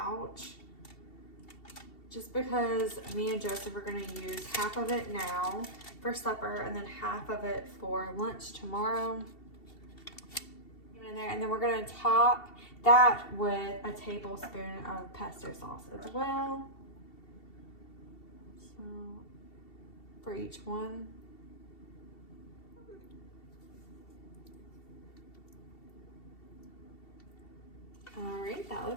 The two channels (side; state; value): right; late; 2.7 ms